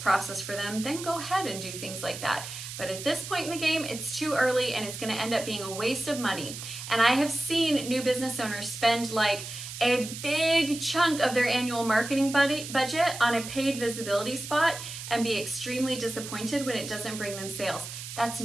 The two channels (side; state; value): right; noise; hiss, 9 dB below the sound